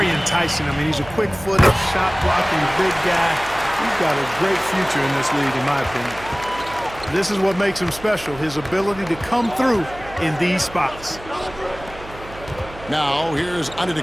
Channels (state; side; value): noise; right; hum, 17 dB below the sound